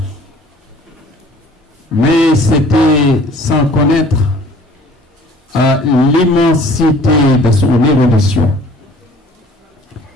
mais c'était sans connaître l'immensité de son érudition.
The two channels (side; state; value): both; normal; correlation 0.51